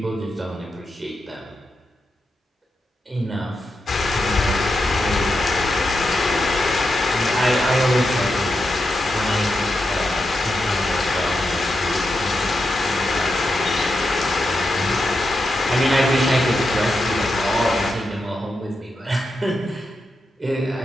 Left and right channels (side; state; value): both; normal; correlation 0.86